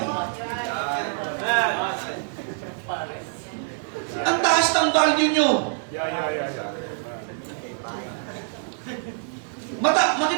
Ang taas ng value nyo.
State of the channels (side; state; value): left; silent; digital silence